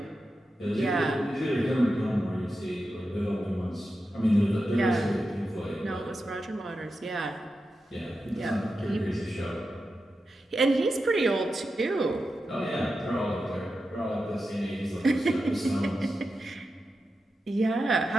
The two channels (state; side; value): normal; both; correlation 0.90